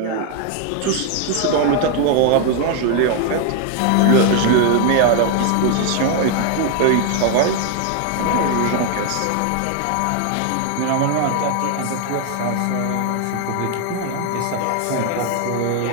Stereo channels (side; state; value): both; different; correlation 0.00